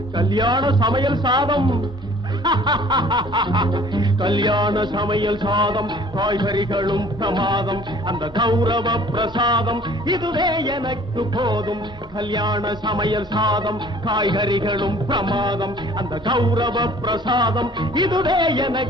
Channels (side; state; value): both; normal; correlation 0.52